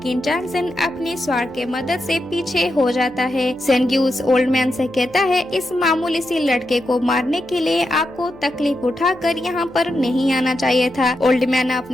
चांगसेन अपनी स्वाड के मदद से पीछे हो जाता है। सेनग्यू उस ओल्ड मैन से कहता है इस मामूली सी लड़के को मारने के लिए आपको तकलीफ उठाकर यहाँ पर नहीं आना चाहिए था। ओल्ड मैन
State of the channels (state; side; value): noise; left; hum, 26 dB below the sound